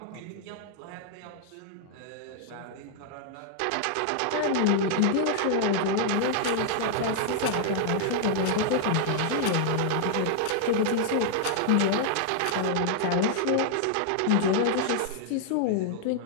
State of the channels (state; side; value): different; both; correlation -0.01